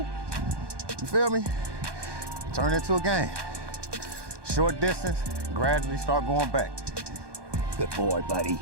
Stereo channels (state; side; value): late; left; 1.2 ms